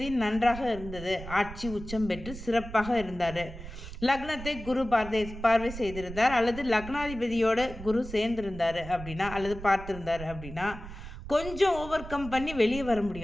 நன்றாக இருந்தது, ஆட்சி உச்சம் பெற்று சிறப்பாக இருந்தார், லக்னத்தை குரு பார்வை செய்திருந்தார், அல்லது லக்னாதிபதியோட குரு சேர்ந்திருந்தார் அப்படின்னா, அல்லது பார்த்துருந்தார் அப்படின்னா கொஞ்சம் ஓவர் கம் பண்ணி வெளியே வர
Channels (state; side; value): noise; right; rumble, 12 dB below the sound